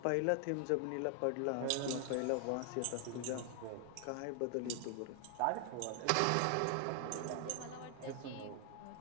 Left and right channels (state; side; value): different; both; correlation 0.00